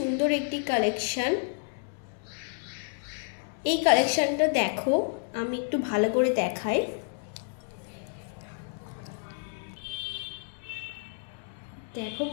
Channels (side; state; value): right; silent; 58 dB below the other